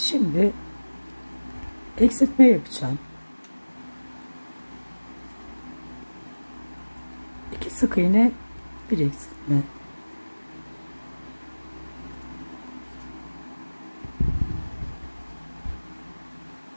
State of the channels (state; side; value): inverted; both; correlation -1.00